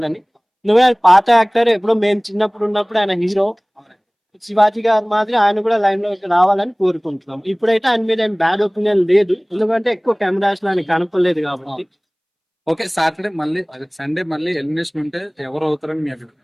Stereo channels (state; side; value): identical; both; correlation 1.00